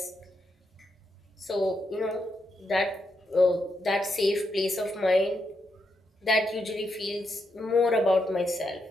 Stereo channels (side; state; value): both; normal; correlation 0.82